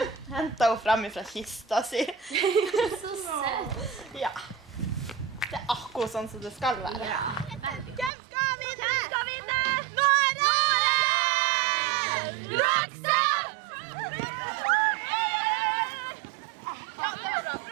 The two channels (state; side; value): drops out; left; at 8.1 s